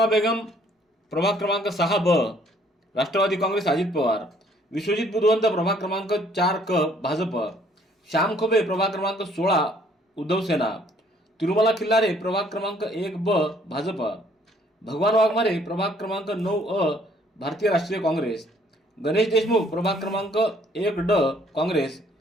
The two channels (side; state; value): both; normal; correlation 0.62